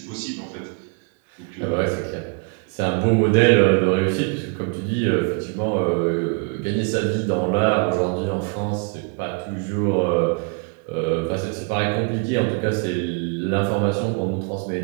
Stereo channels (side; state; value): left; quieter; 34.8 dB